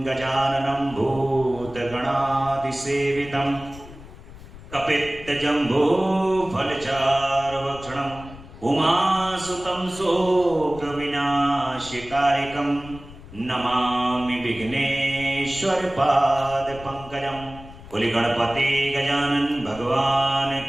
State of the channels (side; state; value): left; noise; rumble, 17 dB below the sound